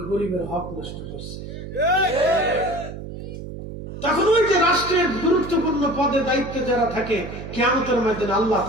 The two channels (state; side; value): noise; right; hum, 10 dB below the sound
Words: গরিবের হক নষ্ট করছে। তখন ওই যে রাষ্ট্রের গুরুত্বপূর্ণ পদে দায়িত্বে যারা থাকে, কিয়ামতের ময়দানে আল্লাহ